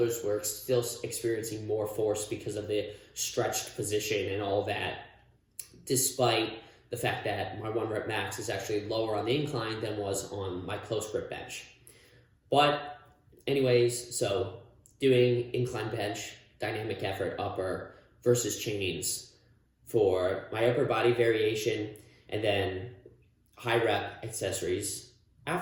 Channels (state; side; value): identical; both; correlation 1.00